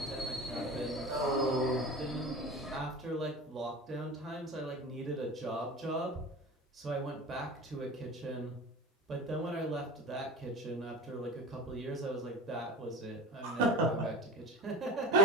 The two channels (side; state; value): both; normal; correlation 0.33